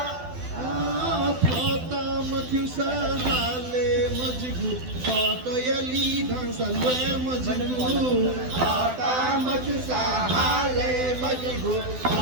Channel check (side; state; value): left; late; 12 ms